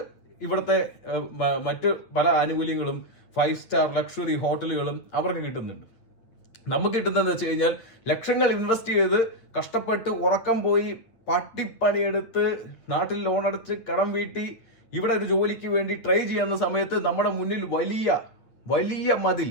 ഇവിടുത്തെ മറ്റു പല ആനുകൂല്യങ്ങളും 5 സ്റ്റാർ ലക്ഷറി ഹോട്ടലുകളും അവർക്ക് കിട്ടുന്നുണ്ട്. നമുക്ക് കിട്ടുന്നതെന്ന് വെച്ച് കഴിഞ്ഞാൽ ലക്ഷങ്ങൾ ഇൻവെസ്റ്റ് ചെയ്ത് കഷ്ടപ്പെട്ട് ഉറക്കം പോയി പട്ടിപ്പണിയെടുത്ത് നാട്ടിൽ ലോൺ അടച്ച് കടം വീട്ടി ഇവിടെ ഒരു ജോലിക്ക് വേണ്ടി ട്രൈ ചെയ്യുന്ന സമയത്ത് നമ്മുടെ മുന്നിൽ വലിയ മതിൽ,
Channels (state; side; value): late; right; 9.0 ms